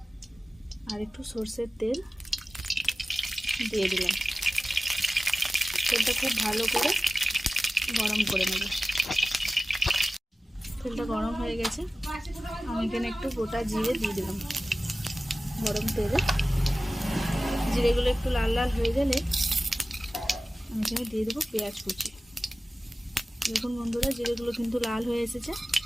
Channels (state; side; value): normal; both; correlation 0.96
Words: আর একটু সরষের তেল দিয়ে দিলাম। তেলটা খুব ভালো করে গরম করে নেব। তেলটা গরম হয়ে গেছে, আমি এখানে একটু গোটা জিরে দিয়ে দিলাম গরম তেলে। জিরেগুলো একটু লাল লাল হয়ে গেলে আমি এখানে দিয়ে দেবো পেঁয়াজ কুচি। দেখুন বন্ধুরা জিরেগুলো কিন্তু লাল হয়ে এসেছে।